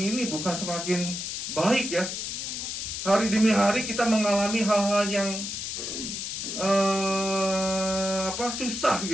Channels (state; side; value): noise; left; hiss, 4 dB below the sound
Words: bukan semakin baik ya. Hari demi hari kita mengalami hal-hal yang susah